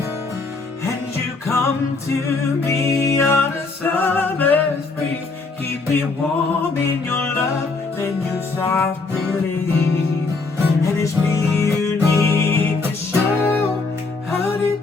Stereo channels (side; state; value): right; quieter; 3.9 dB